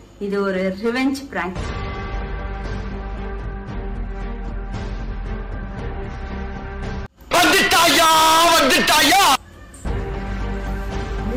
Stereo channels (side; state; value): both; identical; correlation 1.00